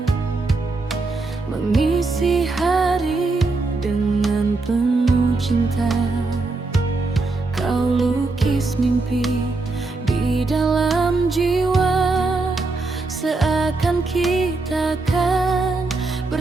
mengisi hari dengan penuh cinta. Kau lukis mimpi di dalam jiwa, seakan kita kan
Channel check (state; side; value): quieter; left; 3.5 dB